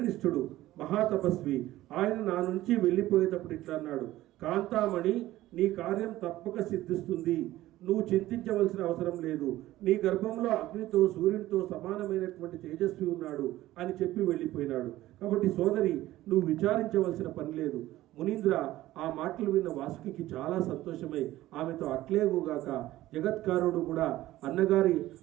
మహాతపస్వి. ఆయన నా నుంచి వెళ్ళిపోయేటప్పుడు ఇట్లా అన్నాడు, కాంతామణి, నీ కార్యం తప్పక సిద్ధిస్తుంది. నువ్వు చింతించవలసిన అవసరం లేదు. నీ గర్భంలో అగ్నితో సూర్యునితో సమానమైనటువంటి తేజస్వి ఉన్నాడు అని చెప్పి వెళ్ళిపోయినాడు. కాబట్టి సోదరి, నువ్వు విచారించవలసిన పని లేదు. మునీంద్ర ఆ మాటలు విన్న వాసుకి చాలా సంతోషమై ఆమెతో అట్లేగుగాక జగత్కారుడు కూడా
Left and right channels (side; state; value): left; quieter; 15.7 dB